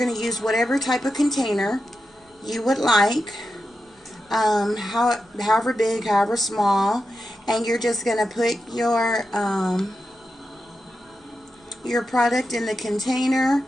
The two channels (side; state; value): both; normal; correlation 0.89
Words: use whatever type of container you would like, however big, however small, and you're just going to put your product in the container.